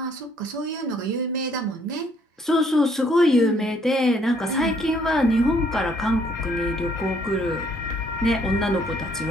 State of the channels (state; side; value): normal; both; correlation 0.65